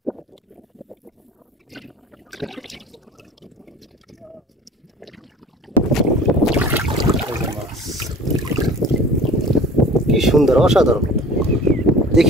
কি সুন্দর, অসাধারণ,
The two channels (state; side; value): normal; both; correlation 0.44